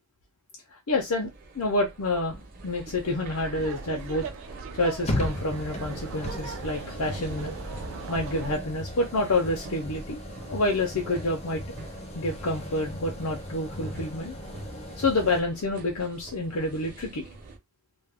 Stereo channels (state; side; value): normal; both; correlation -0.07